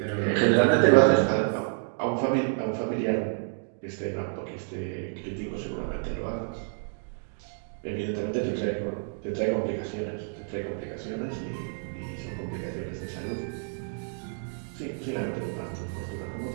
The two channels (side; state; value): left; silent; digital silence